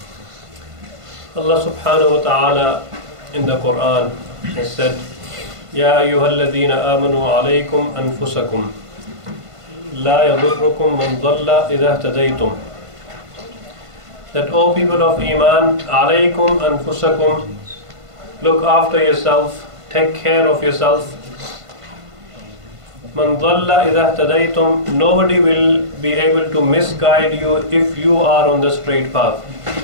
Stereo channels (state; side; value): late; left; 1.5 ms